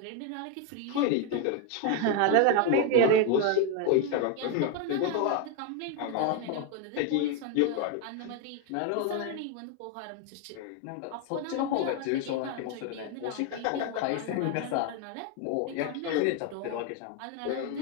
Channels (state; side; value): different; both; correlation 0.01